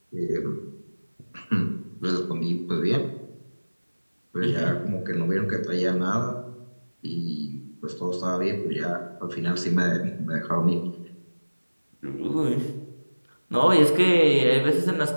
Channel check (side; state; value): both; inverted; correlation -1.00